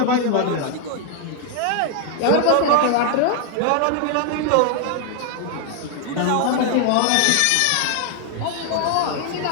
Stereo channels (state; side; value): different; both; correlation 0.00